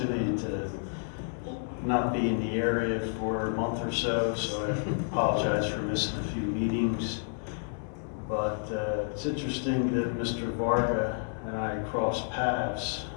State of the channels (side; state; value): right; silent; 58 dB below the other